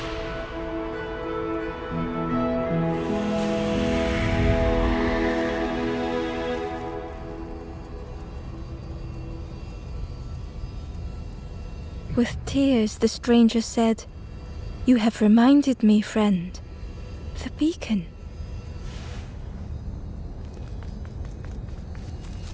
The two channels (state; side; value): identical; both; correlation 1.00